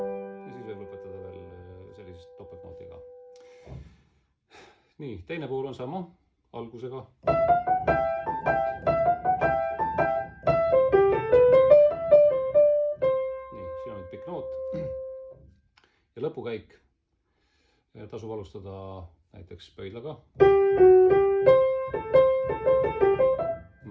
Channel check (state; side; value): identical; both; correlation 1.00